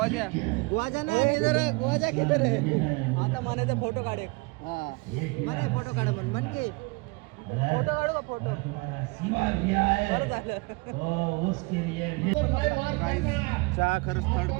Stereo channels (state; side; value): quieter; left; 27.9 dB